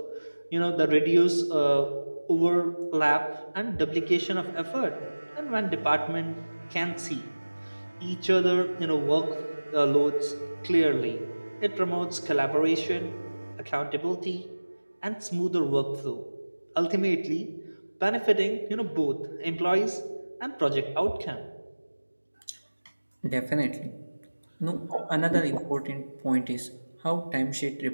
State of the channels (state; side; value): inverted; both; correlation -1.00